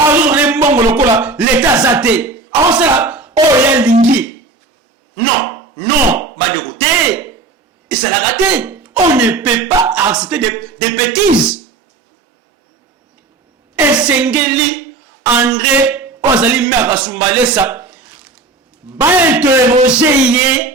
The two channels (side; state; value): left; quieter; 3.8 dB